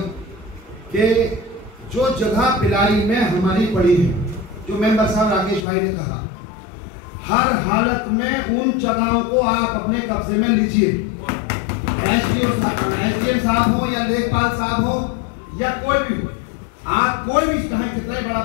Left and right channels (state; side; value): drops out; right; at 5.7 s